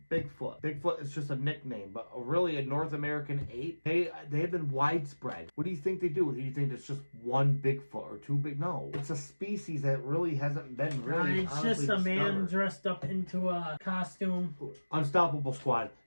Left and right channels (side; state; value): both; inverted; correlation -1.00